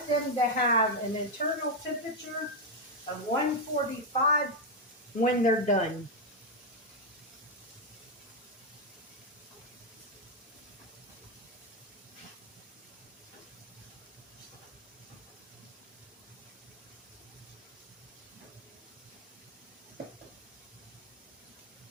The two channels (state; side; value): normal; both; correlation 0.03